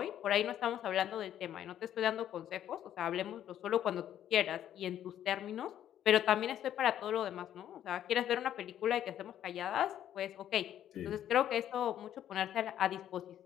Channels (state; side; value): quieter; right; 11.0 dB